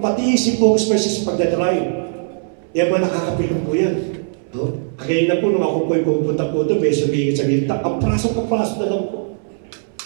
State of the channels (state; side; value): silent; left; 66 dB below the other